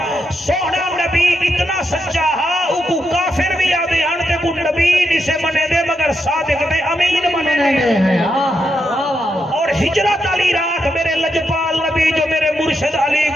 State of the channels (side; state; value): both; normal; correlation 0.83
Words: سونا نبی اتنا سچا ہاں کو کافر بھی آدھے ہن تے کو نبی نہیں سے منے دے مگر صادق تے امین منے دے اور ہجرت علی رات میرے لجپال نبی جو میرے مرشد علی